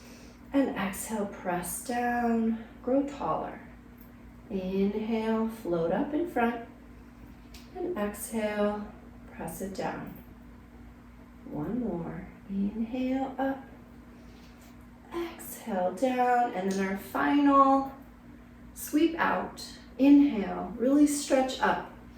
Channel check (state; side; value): identical; both; correlation 1.00